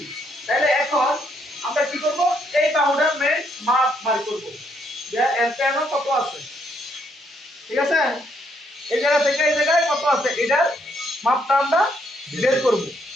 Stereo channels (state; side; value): normal; both; correlation 0.73